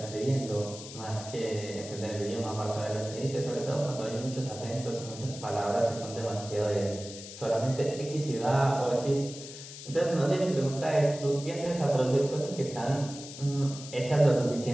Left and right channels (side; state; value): left; noise; hiss, 13 dB below the sound